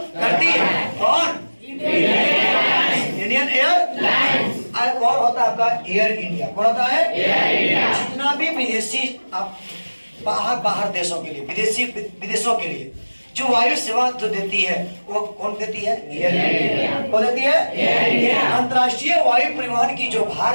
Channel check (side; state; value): both; inverted; correlation -1.00